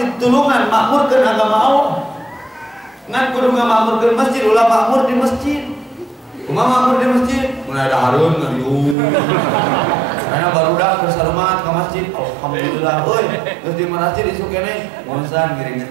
tulungan makmurkeun agama Allah. Ngan kudu ngamakmurkeun masjid ulah makmur di masjid. Kumaha makmur di masjid? Mun ada Harun ngariung. Karena barudak bersalamat ke masjid. Alhamdulillah. Euy, geus di masjid isu keneh monsan ngiring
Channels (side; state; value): left; drops out; at 9.0 s